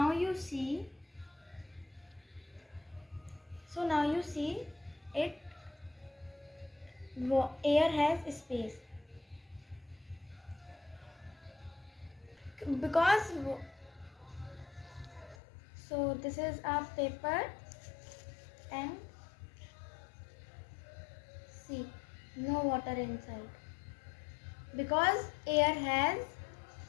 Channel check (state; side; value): drops out; right; at 15.4 s